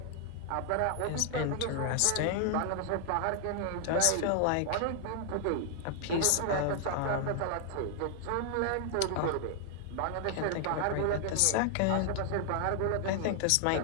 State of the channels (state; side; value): different; both; correlation 0.00